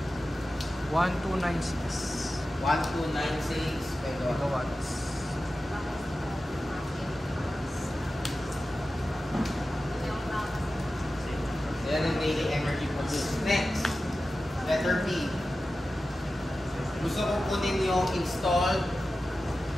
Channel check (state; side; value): normal; both; correlation 0.94